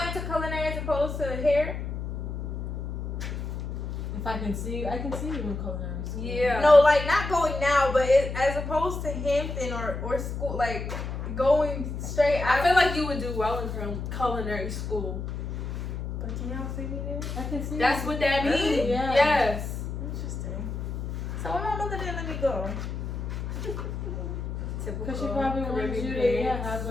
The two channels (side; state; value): left; noise; hum, 5 dB below the sound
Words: to culinary as opposed to hair? If I can see you, I can see you in culinary school. Yeah. No, like not going now, but as opposed to Hampton or school, like going straight. I feel like you would do well in culinary school. But can y'all see me there? I can see That's you. what that means. Really? Yeah. Yes. Interesting. So when my mother didn't let me go. Because she probably wanted you to have